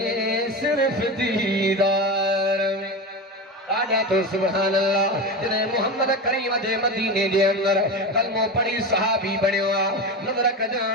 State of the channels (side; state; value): both; normal; correlation 0.23